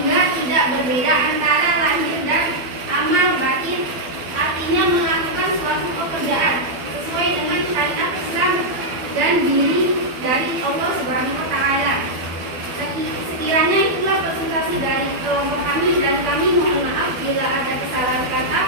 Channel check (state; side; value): late; left; 12 ms